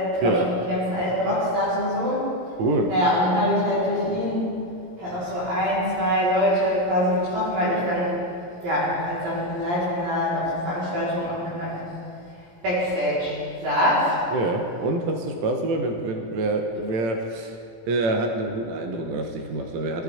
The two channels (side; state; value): left; late; 17 ms